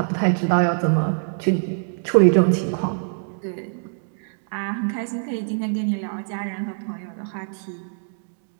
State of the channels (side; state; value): left; silent; 63 dB below the other